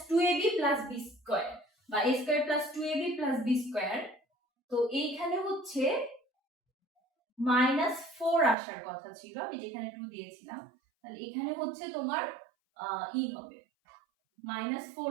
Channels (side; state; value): left; drops out; at 8.6 s